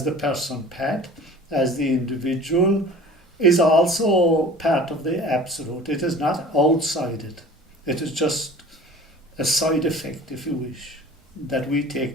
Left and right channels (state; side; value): normal; both; correlation 0.43